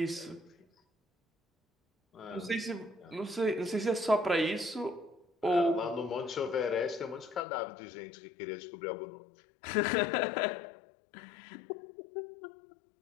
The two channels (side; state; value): right; drops out; at 7.4 s